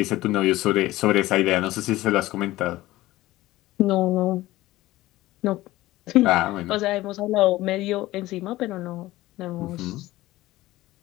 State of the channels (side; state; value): right; quieter; 17.2 dB